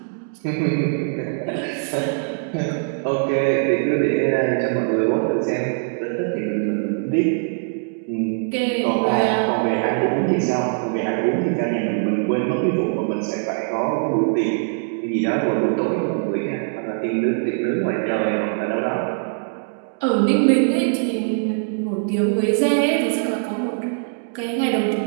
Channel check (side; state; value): left; silent; digital silence